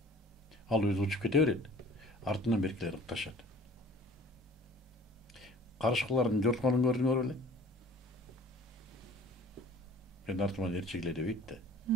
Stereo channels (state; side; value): normal; both; correlation 0.48